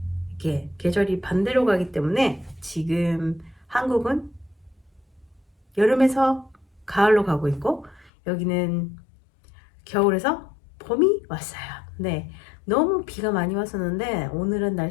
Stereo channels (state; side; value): drops out; right; at 8.1 s